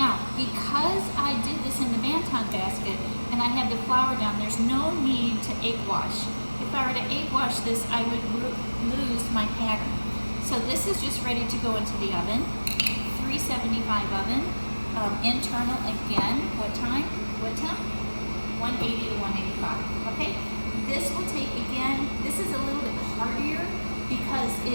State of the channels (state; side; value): inverted; both; correlation -1.00